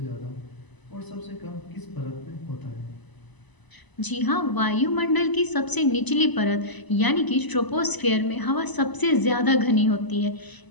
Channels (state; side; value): late; right; 1.0 ms